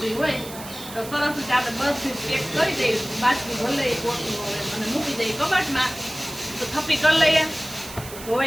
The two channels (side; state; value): right; noise; hiss, 14 dB below the sound